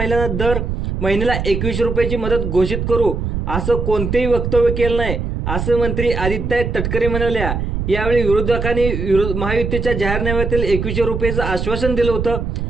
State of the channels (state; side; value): noise; right; rumble, 3 dB below the sound